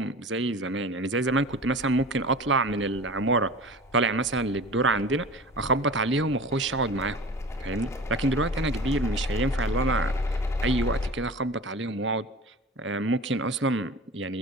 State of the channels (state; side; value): normal; both; correlation 0.37